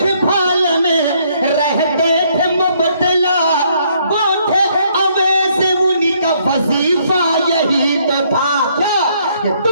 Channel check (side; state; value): both; inverted; correlation -0.68